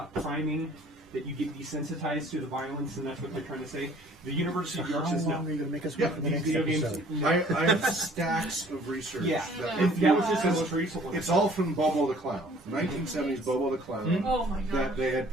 priming, that you get desensitized to the violence, and that's what they're trying to say. The University of York says no. How long are you going to make us Yeah, wait for the These next video games, episode? no. I have stacks of research. Yeah, that- and that was just the most recent one. It's all from Bobo the Clown, 1970s Bobo the Clown. Oh my That god. they had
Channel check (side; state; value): both; normal; correlation 0.54